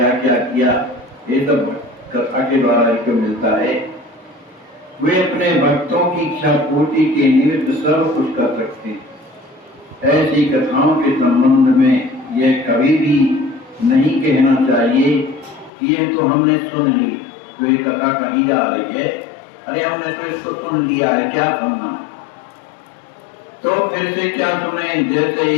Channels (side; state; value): right; drops out; at 15.7 s